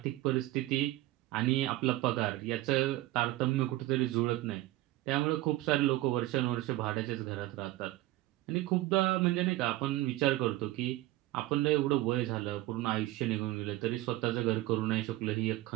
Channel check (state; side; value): quieter; left; 17.3 dB